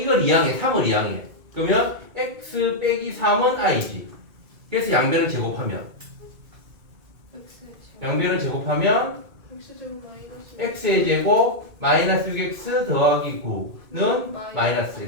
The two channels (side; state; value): left; late; 2.2 ms